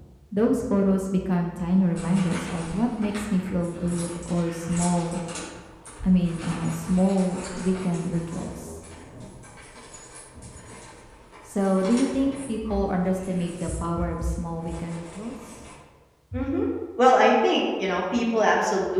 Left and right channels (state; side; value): identical; both; correlation 1.00